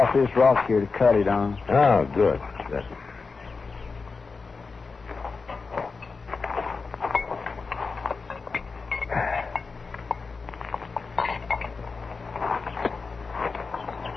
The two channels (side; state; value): right; quieter; 4.5 dB